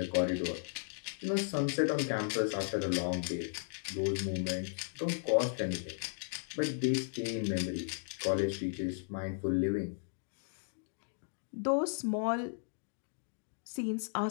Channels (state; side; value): silent; right; digital silence